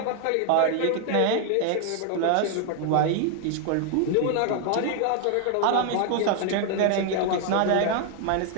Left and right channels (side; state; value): both; different; correlation 0.00